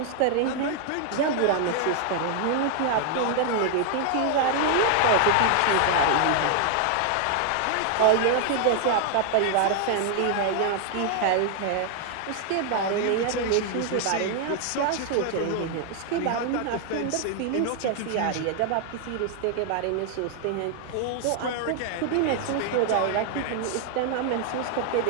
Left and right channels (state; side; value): different; both; correlation 0.00